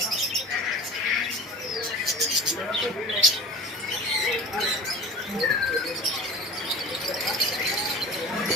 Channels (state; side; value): normal; both; correlation 0.37